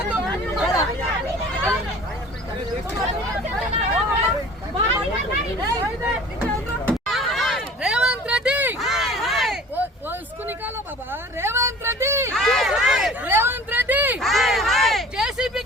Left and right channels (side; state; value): both; normal; correlation 0.45